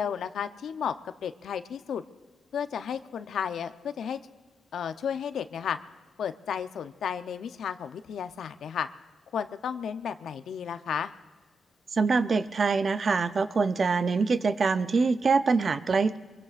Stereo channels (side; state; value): both; normal; correlation 0.83